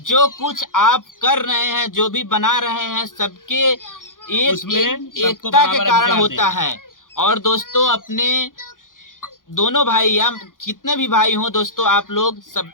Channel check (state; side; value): late; right; 0.89 ms